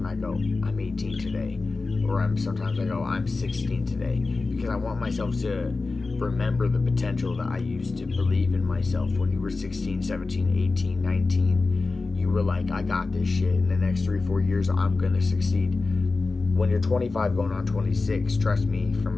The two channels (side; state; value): right; quieter; 3.8 dB